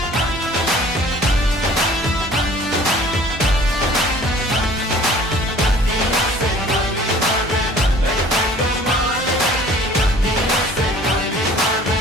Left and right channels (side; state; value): both; normal; correlation 0.51